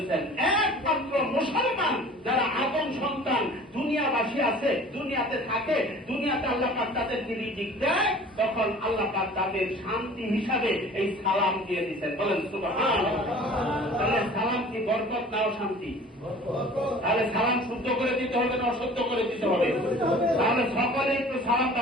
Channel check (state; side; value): normal; both; correlation 0.45